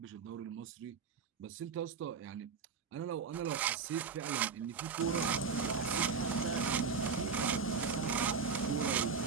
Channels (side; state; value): left; quieter; 5.7 dB